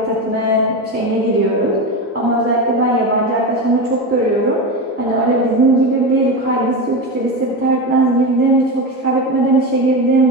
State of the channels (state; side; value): normal; both; correlation 0.19